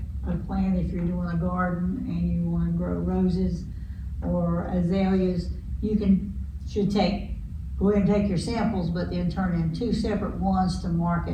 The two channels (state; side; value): identical; both; correlation 1.00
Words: of plant, if you're doing a garden and you wanna grow roses or azaleas, go ahead and take your samples, but then turn in 2 separate ones to